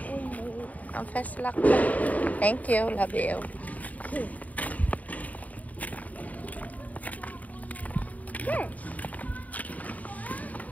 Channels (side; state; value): right; late; 0.073 ms